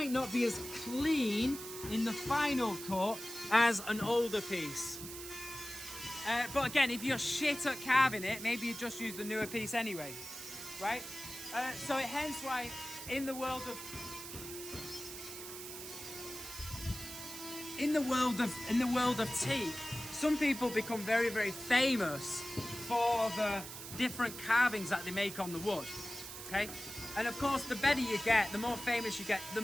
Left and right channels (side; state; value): right; noise; hiss, 10 dB below the sound